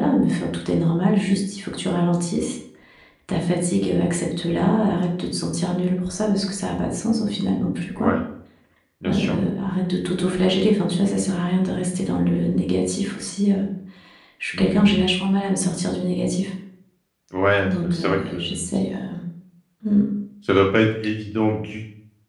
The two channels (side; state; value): both; identical; correlation 1.00